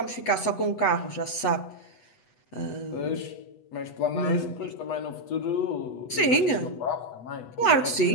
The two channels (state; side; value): late; right; 8.2 ms